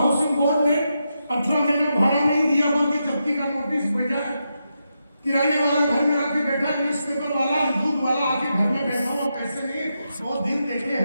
बोर्ड ने 18 महीने भाड़ा नहीं दिया, बल्कि जब्ती का नोटिस भेजा है। किराने वाला घर में आके बैठा है, न्यूज़पेपर वाला, दूध वाला आके घर में बैठा हुआ, पैसे नहीं है। वो दिन देखे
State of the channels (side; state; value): both; inverted; correlation -0.85